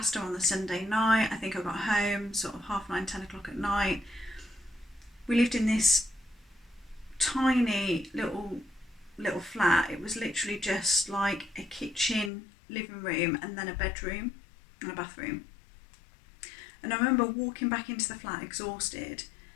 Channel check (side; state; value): right; drops out; at 12.3 s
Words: on the Sunday night. I think I got home sort of 9:30, 10 o'clock at night. We lived in this tiny little flat. It was literally just like a kitchen, living room, and then a bedroom and a bathroom. And I remember walking back into the flat exhausted,